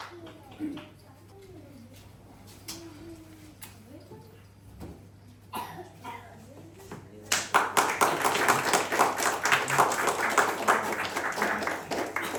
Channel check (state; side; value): identical; both; correlation 1.00